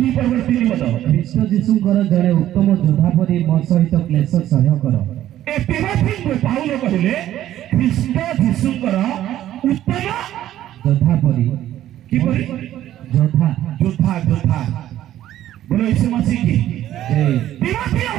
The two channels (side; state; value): left; quieter; 12.7 dB